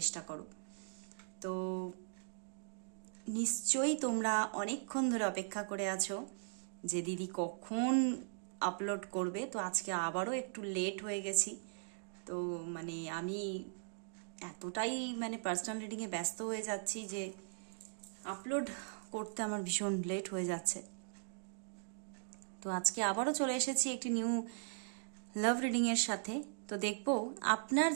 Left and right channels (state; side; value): silent; left; digital silence